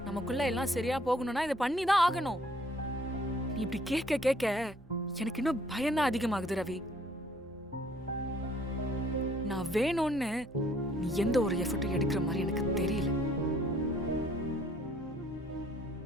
நமக்குள்ள எல்லாம் சரியா போகணும்னா இதை பண்ணி தான் ஆகணும். நீ இப்படி கேட்க கேட்க எனக்கு இன்னும் பயம்தான் அதிகமாகுது ரவி. நான் வேணும்னு நீ எந்த ஒரு எஃபர்ட்டும் எடுக்கிற மாதிரி எனக்கு தெரியல.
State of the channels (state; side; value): normal; both; correlation 0.62